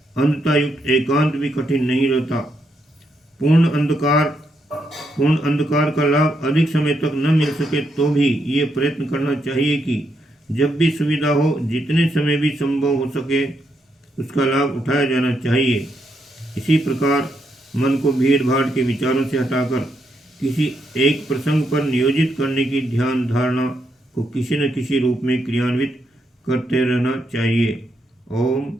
अंधतायुक्त एकांत भी कठिन नहीं रहता। पूर्ण अंधकार का लाभ अधिक समय तक न मिल सके तो भी ये प्रयत्न करना चाहिए कि जब भी सुविधा हो, जितने समय भी संभव हो सके, उसका लाभ उठाया जाना चाहिए। इसी प्रकार मन को भीड़ भाड़ के विचारों से हटाकर किसी एक प्रसंग पर नियोजित करने की ध्यान धारणा को किसी न किसी रूप में क्रियान्वित करते रहना चाहिए। ओम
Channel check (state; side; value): normal; both; correlation 0.79